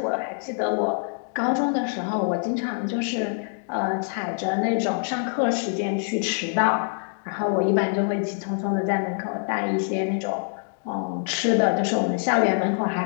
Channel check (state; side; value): silent; right; 62 dB below the other